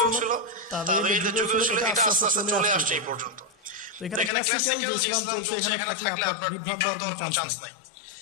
ছিল, তাবেঈদের যুগেও ছিল, এটা আস্তে আস্তে চলে আসছে এই পর্যন্ত। এখানে ক্লাসিক্যাল যে ইসলাম চলছে এখানে থাকলে আপনার বিভ্রান্ত হওয়ার কোনো চান্স নাই।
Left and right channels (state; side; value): drops out; right; at 4.3 s